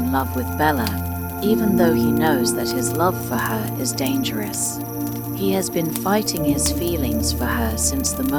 love with Bella, even though he knows that his love for her is dangerous. He has been fighting his feelings for her since the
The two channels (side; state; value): both; identical; correlation 1.00